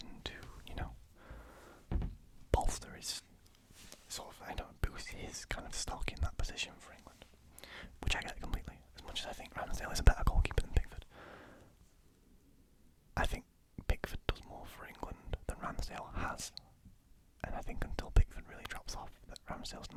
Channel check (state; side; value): identical; both; correlation 1.00